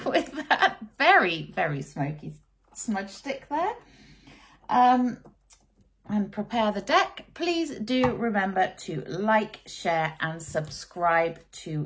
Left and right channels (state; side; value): identical; both; correlation 1.00